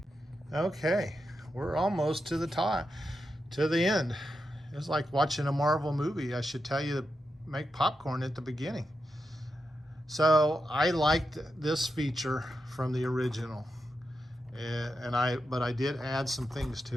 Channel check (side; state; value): both; normal; correlation 0.87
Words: Okay, we're almost to the top, to the end. It's like watching a Marvel movie. I should tell you to make popcorn at the beginning. So I liked this feature from the original, but I did add some things